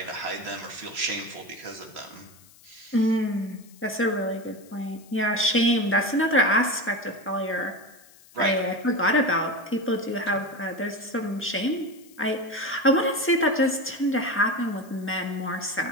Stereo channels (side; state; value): left; noise; hiss, 25 dB below the sound